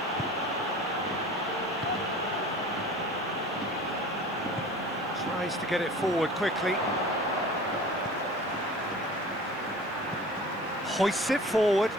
Tries to get it forward quickly. Hoists it forward.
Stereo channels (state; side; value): noise; right; hiss, 30 dB below the sound